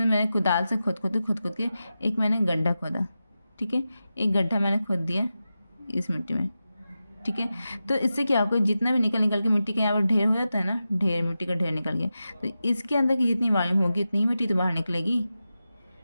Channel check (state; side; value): inverted; both; correlation -0.92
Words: मैंने कुदाल से खोद के एक मैंने गड्ढा खोदा, ठीक है, एक गड्ढा मैंने खोद दिया इस मिट्टी में, ठीक है। तो इससे क्या होगा, जितना भी निकल के मिट्टी का यहाँ पर ढेर हो जाता है ना, ढेर मिट्टी का ढेर निकल गया, तो इसके अंदर की जितनी वॉल्यूम होगी उतनी ही मिट्टी तो बाहर निकलेगी,